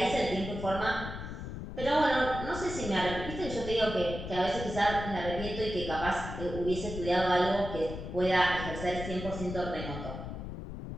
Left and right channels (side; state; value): left; noise; rumble, 8 dB below the sound